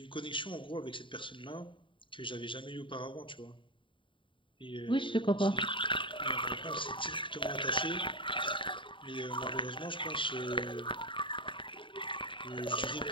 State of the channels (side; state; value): right; late; 0.24 ms